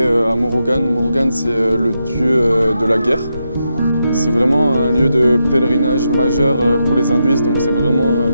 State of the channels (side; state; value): both; inverted; correlation -0.85